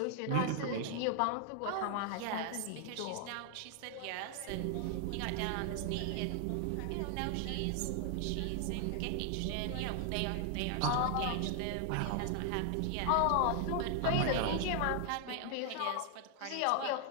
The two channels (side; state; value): both; different; correlation 0.00